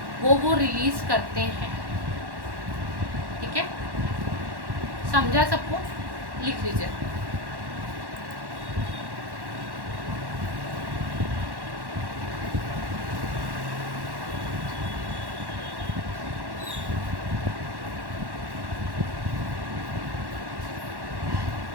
वो रिलीज करते हैं, ठीक है। समझा सबको? लिख लीजिए।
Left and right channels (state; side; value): late; left; 1.1 ms